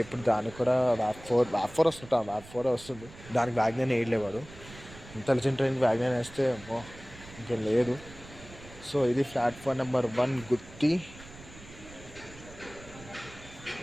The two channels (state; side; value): noise; right; rumble, 18 dB below the sound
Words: ఇప్పుడు దానికి కూడా వ్యాప్ ఫోర్ వస్తుంది. దానికి వ్యాగ్నైన్ వేయలేవాడు. ఇంటెలిజెంట్ ట్రైన్కి వ్యాగ్నైన్ వేస్తే ఇంకేం లేదు. సో ఇది ప్లాట్ఫామ్ నెంబర్ 1 గుత్తి.